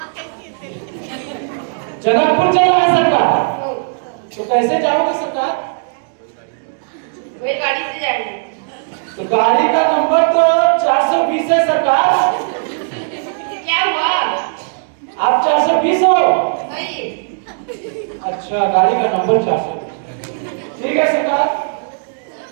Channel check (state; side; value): silent; left; digital silence